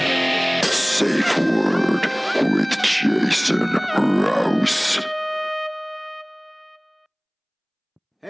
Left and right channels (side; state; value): both; identical; correlation 1.00